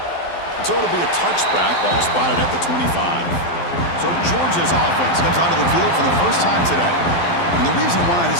So it'll be a touchback, ball spotted at the 25. So Georgia's offense comes onto the field for the first time today. And the reason why this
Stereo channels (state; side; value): late; right; 12 ms